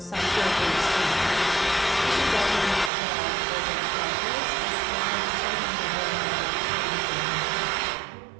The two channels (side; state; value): left; drops out; at 2.9 s